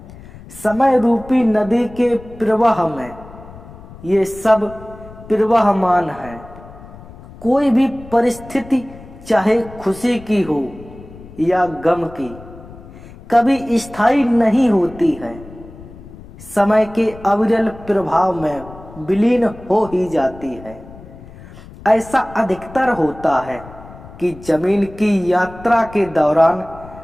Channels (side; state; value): left; noise; rumble, 18 dB below the sound